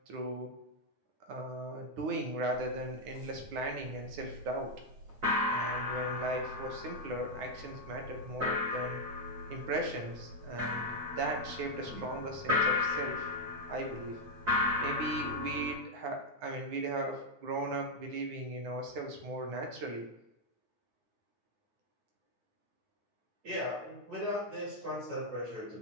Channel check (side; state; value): left; late; 9.6 ms